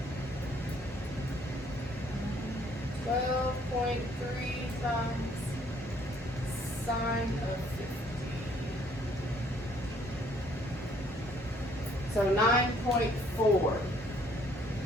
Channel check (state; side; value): normal; both; correlation 0.63